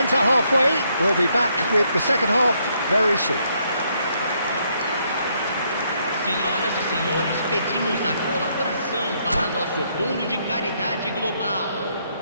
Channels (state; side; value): inverted; both; correlation -0.73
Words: at halfway. We'll be back with the second half very soon. Senhoras e senhores, pedimos a colaboração para nosso Fundo de Caridade Global.